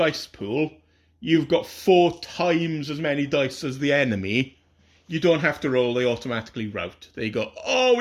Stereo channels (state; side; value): identical; both; correlation 1.00